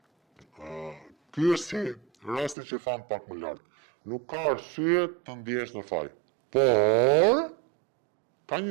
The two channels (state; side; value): drops out; left; at 2.6 s